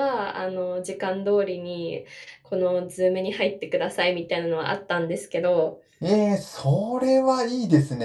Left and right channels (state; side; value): identical; both; correlation 1.00